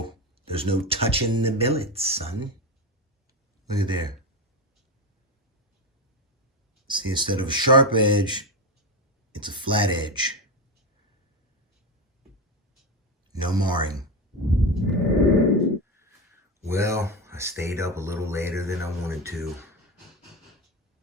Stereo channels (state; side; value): normal; both; correlation 0.17